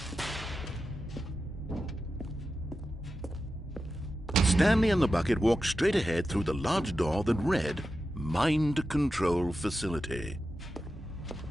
Stanley and the bucket walked straight ahead through the large door that read, Mind Control Facility.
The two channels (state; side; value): normal; both; correlation 0.91